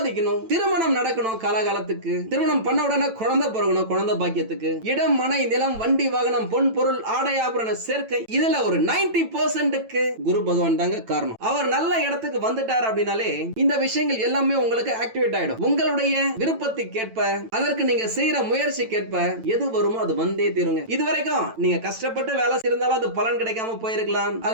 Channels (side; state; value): left; late; 9.0 ms